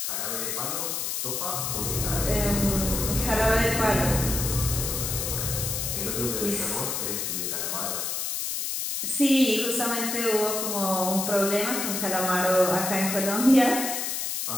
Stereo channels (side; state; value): left; noise; hiss, 2 dB below the sound